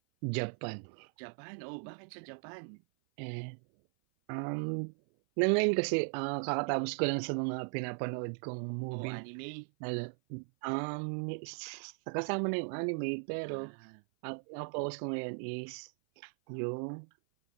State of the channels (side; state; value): left; silent; 53 dB below the other